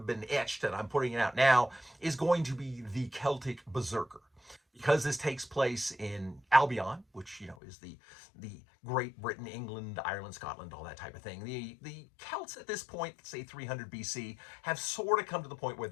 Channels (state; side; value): drops out; right; at 7.6 s